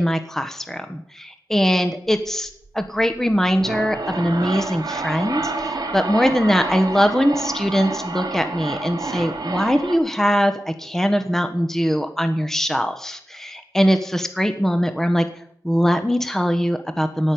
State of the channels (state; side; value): normal; both; correlation 0.93